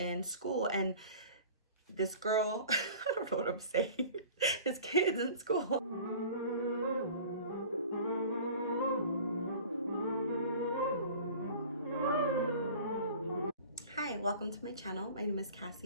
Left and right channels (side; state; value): both; inverted; correlation -0.43